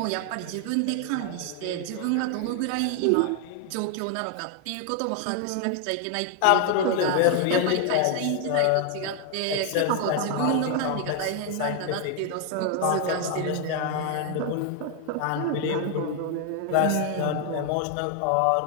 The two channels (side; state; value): both; different; correlation 0.00